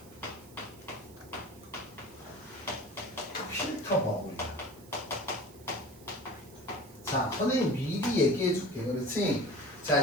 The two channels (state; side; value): noise; right; hiss, 23 dB below the sound